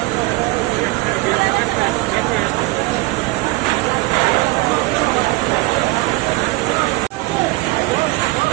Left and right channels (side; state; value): left; quieter; 21.8 dB